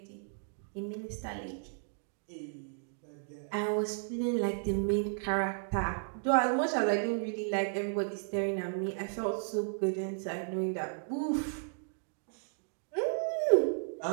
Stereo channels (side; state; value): left; silent; digital silence